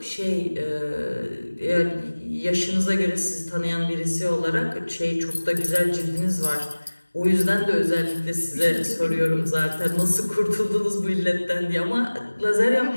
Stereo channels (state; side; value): inverted; both; correlation -1.00